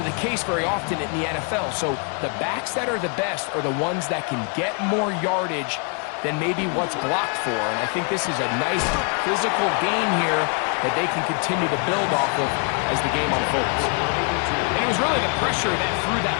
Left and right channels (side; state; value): right; quieter; 38.7 dB